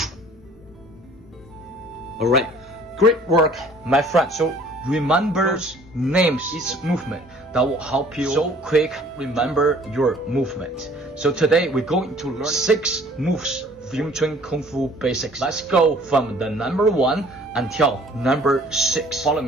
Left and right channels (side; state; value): both; normal; correlation 0.54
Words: Alright, great work, my friend. So remember names, each movement that will help you so quick remember your movement. So today we're going to learn 6 moves of Yim Wing-chun Kung Fu basics. Let's go from the number 1 until number 6. Follow